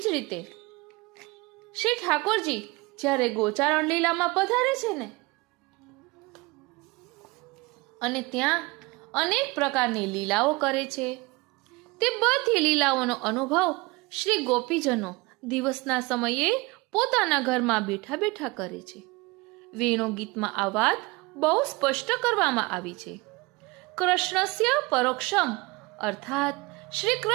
જ રીતે શ્રી ઠાકોરજી જ્યારે ગોચારણ લીલામાં પધારે છે ને, અને ત્યાં અનેક પ્રકારની લીલાઓ કરે છે, તે બધી લીલાઓનો અનુભવ શ્રી ગોપીજનો દિવસના સમયે પોતાના ઘરમાં બેઠા બેઠા કરે છે. વેણુ ગીતમાં આ વાત બહુ સ્પષ્ટ કરવામાં આવી છે. કૃષ્ણસ્ય પરોક્ષમ અર્થાત શ્રી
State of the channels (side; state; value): left; quieter; 24.3 dB